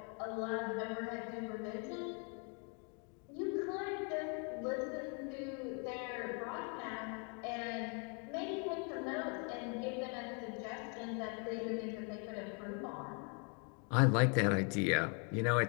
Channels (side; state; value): right; quieter; 37.4 dB